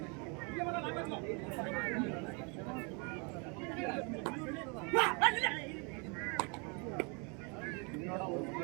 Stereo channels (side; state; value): left; quieter; 33.2 dB